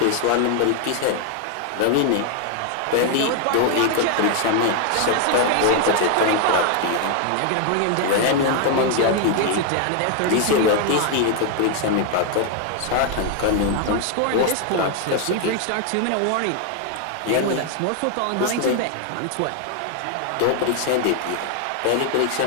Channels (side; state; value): both; different; correlation 0.00